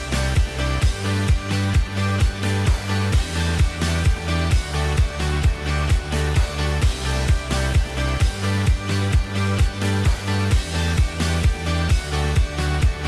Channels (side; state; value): both; identical; correlation 1.00